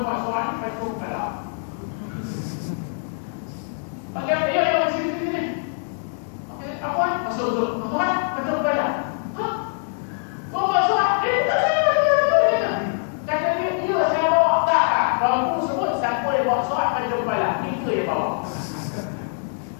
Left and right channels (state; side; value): silent; right; digital silence